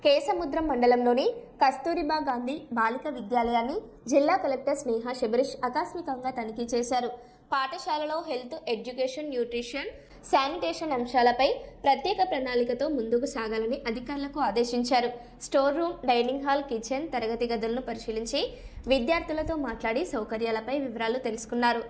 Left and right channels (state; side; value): identical; both; correlation 1.00